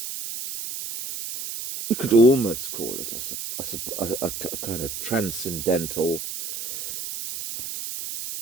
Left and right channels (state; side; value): noise; right; hiss, 7 dB below the sound